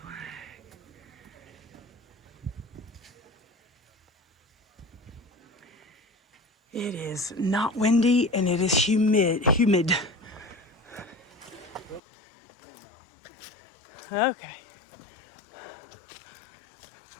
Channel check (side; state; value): right; drops out; at 12.0 s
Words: flag. It is not windy and it is humid. Okay.